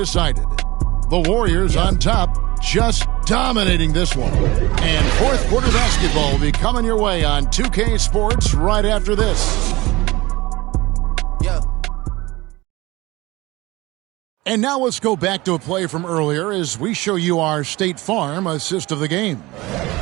The Warriors on top, just dominating this one. And fourth quarter basketball will be coming your way on 2K Sports right after this. And now let's go back to a play from earlier as we show you our State Farm assist of the game.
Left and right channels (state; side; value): quieter; left; 20.7 dB